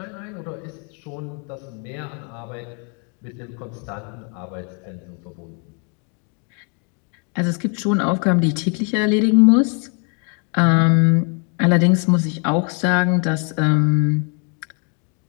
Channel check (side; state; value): right; quieter; 37.8 dB